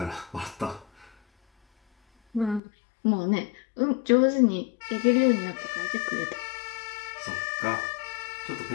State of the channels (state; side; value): drops out; right; at 2.6 s